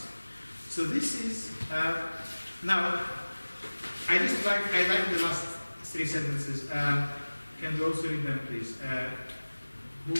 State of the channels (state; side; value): inverted; both; correlation -1.00